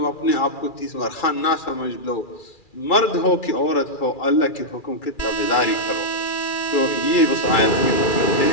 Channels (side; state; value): right; late; 2.4 ms